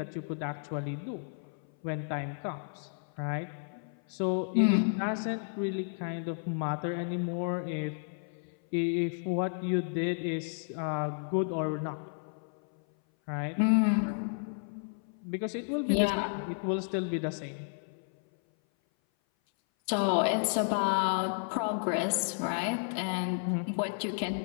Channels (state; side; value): silent; right; 56 dB below the other